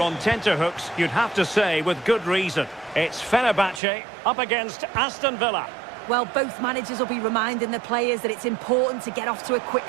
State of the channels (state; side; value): drops out; left; at 3.8 s